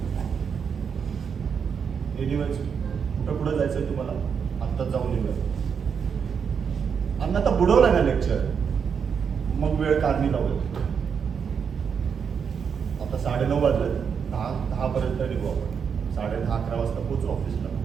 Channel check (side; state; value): left; quieter; 6.7 dB